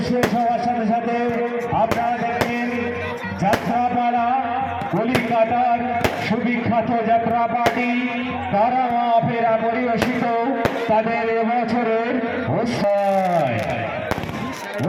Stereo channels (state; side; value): identical; both; correlation 1.00